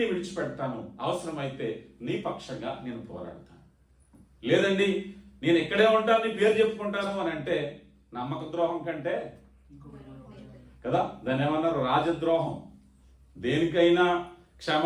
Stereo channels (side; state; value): both; identical; correlation 1.00